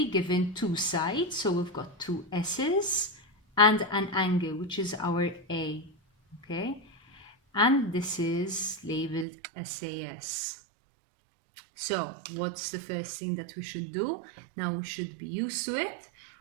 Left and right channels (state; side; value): drops out; left; at 9.2 s